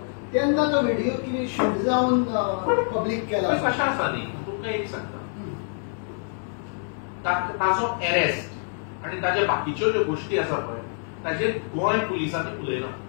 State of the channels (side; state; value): right; silent; digital silence